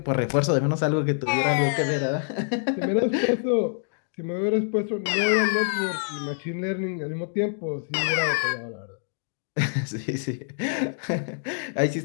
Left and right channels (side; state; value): right; silent; digital silence